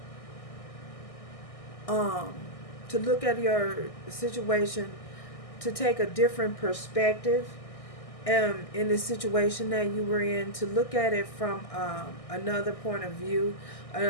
to look at your situation, to take a different perspective in the situation that you were in, to look at it from another point of view,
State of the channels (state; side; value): late; right; 1.6 ms